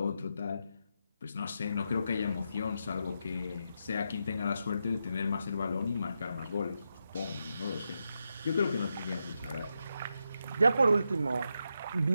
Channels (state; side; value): inverted; both; correlation -0.85